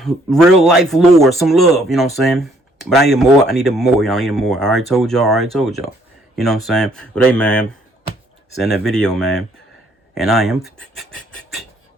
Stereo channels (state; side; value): normal; both; correlation 0.65